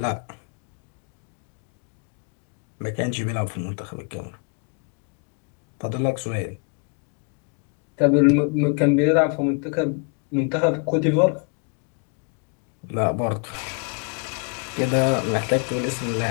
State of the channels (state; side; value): quieter; right; 36.8 dB